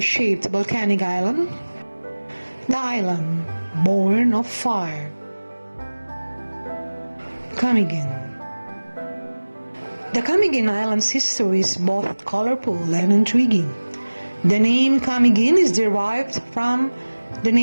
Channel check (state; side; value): inverted; both; correlation -1.00